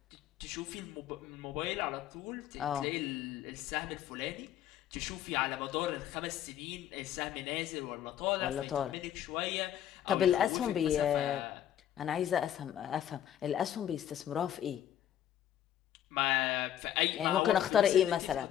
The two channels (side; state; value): right; quieter; 10.8 dB